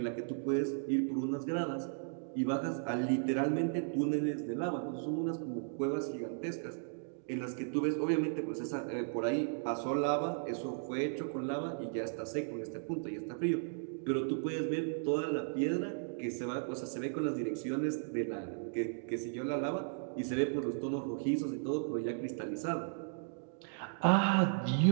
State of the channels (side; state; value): left; silent; digital silence